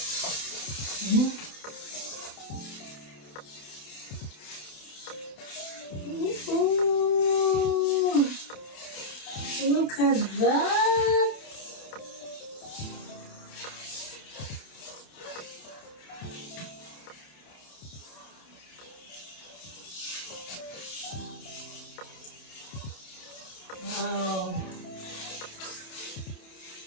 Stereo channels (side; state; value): right; late; 28 ms